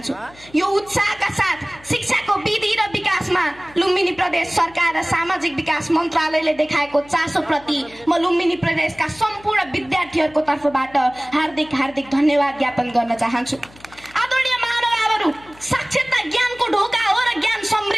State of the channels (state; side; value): noise; left; hum, 24 dB below the sound